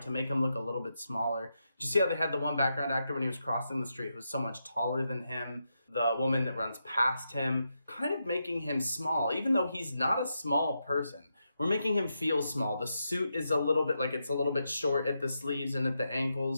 to make him look a little bit smaller. Did you see how they had the one background actor when he was crossing the street who was so much taller than him? The woman that runs past him, kind of making him small, even though he's not a small person. We're making him feel small. The suit is a little bit like it's a little bit short at the sleeves and at the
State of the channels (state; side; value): inverted; both; correlation -0.85